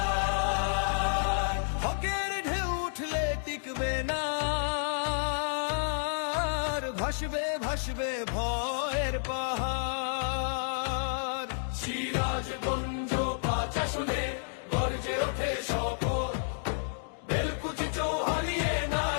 হকের ঢেউ উঠলে টিকবে না, ভাসবে ভাসবে ভয়ের পাহাড়। সিরাজগঞ্জ ৫ আসনে গর্জে ওঠে শপথ, বেলকুচি চৌহালিয়ে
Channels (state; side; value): silent; right; digital silence